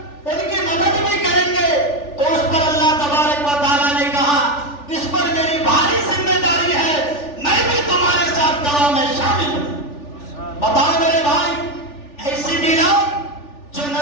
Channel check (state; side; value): late; right; 3.4 ms